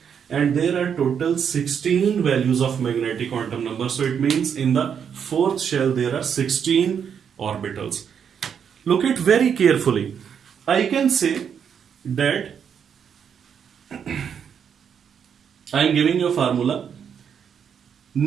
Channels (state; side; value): quieter; left; 7.6 dB